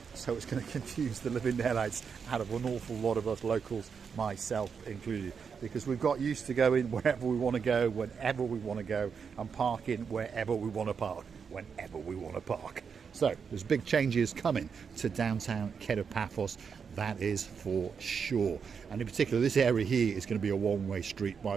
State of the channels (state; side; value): quieter; left; 6.3 dB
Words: So it's going to confuse the living daylights out of an awful lot of us locals, myself included, because we've got used to going wherever we want to go, whenever we want to go, and parking wherever we want to park, whenever we want to park. So there's big changes coming to downtown Kato Paphos, that is for sure. And in particular, this area here is going to be a one-way street, by